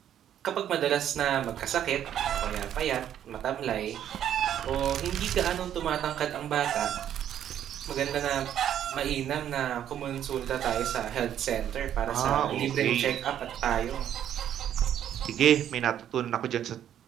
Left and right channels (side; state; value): left; quieter; 10.4 dB